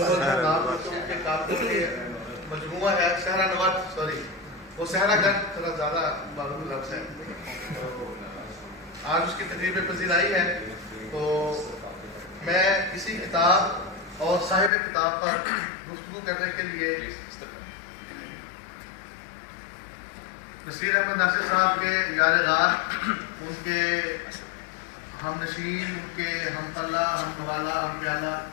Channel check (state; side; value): drops out; right; at 14.7 s